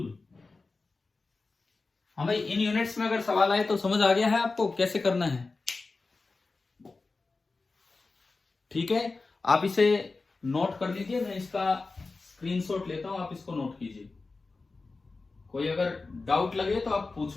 हाँ भाई, इन यूनिट्स में अगर सवाल आए तो समझ आ गया है आपको कैसे करना है। ठीक है, आप इसे नोट कर लीजिए, मैं इसका स्क्रीनशॉट लेता हूं, आप इसको नोट कीजिए। कोई अगर डाउट लगे तो आप पूछ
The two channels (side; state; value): right; quieter; 3.8 dB